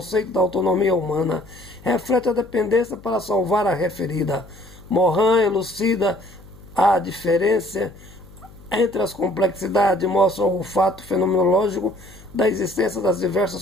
da autonomia humana, reflete a dependência para salvar a referida. Morin elucida a diferença entre as complexidades, mostra o fato fenomenológico da existência das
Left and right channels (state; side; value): noise; left; hum, 22 dB below the sound